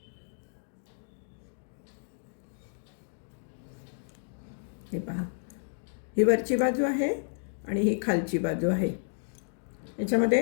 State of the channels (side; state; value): right; silent; digital silence